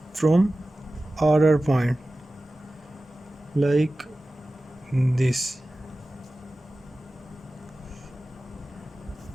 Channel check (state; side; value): normal; both; correlation 0.96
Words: from RR point like this.